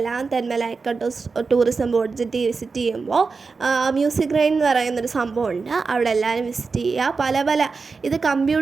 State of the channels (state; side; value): quieter; left; 4.6 dB